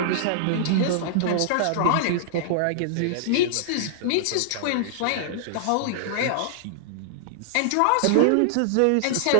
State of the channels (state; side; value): different; both; correlation -0.01